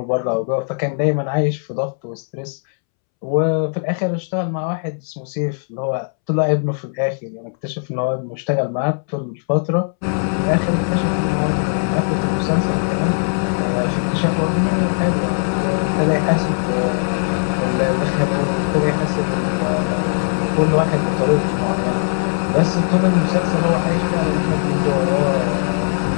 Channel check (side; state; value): right; silent; 66 dB below the other